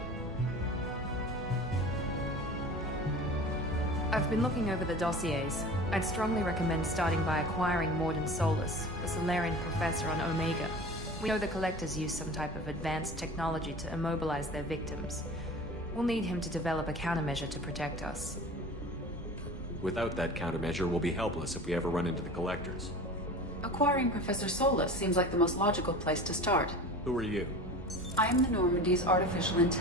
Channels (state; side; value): normal; both; correlation 0.37